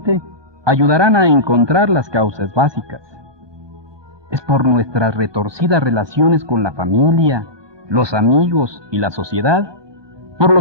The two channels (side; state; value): left; late; 1.2 ms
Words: ayudarán a encontrar las causas básicas. Es por nuestras retorcidas relaciones con la familia, los amigos y la sociedad, por